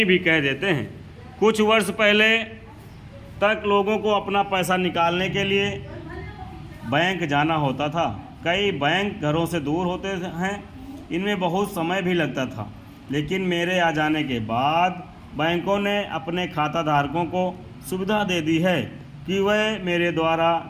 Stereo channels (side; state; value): both; identical; correlation 1.00